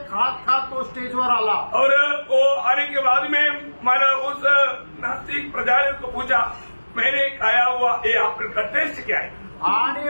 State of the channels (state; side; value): inverted; both; correlation -1.00